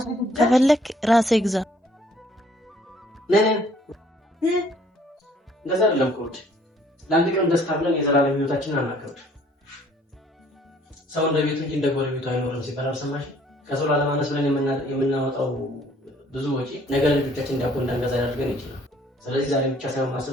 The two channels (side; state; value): both; normal; correlation 0.59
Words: ከፈለክ ራሴ ግዛ። እንደዛ አይደለም ኮድ ለአንድ ቀን ደስታ ብለን የዘላለም ህይወታችንን አናከብድ። ሰው እንደ ቤቱ እንጂ እንደ ጎረቤቱ አይኖርም ሲባል አልሰማሽ? ከሰው ላለማነስ ብለን የምናወጣው ብዙ ወጪ ነገ ልጆቻችን ዳቦ እንዳንገዛ ያደርገን ይችላል። ስለዚህ ዛሬ ብቻ ሳይሆን